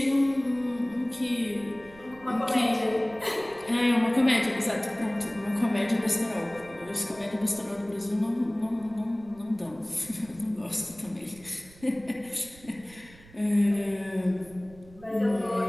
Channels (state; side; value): noise; right; rumble, 22 dB below the sound